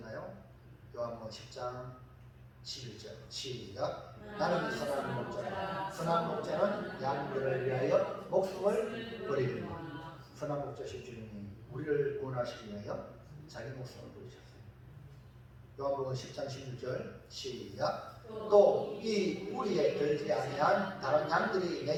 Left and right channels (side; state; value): both; identical; correlation 1.00